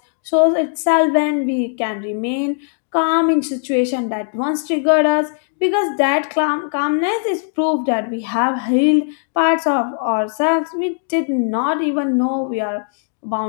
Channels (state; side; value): silent; right; digital silence